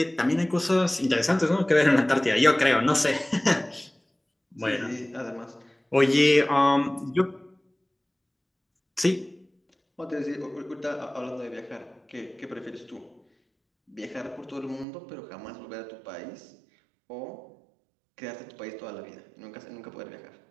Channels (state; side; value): drops out; left; at 14.9 s